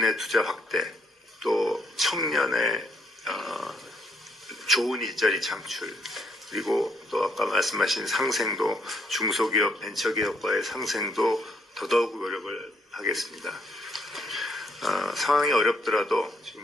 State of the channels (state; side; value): normal; both; correlation 0.71